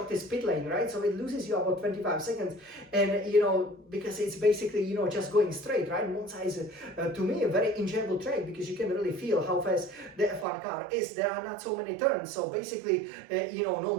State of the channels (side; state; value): left; drops out; at 10.5 s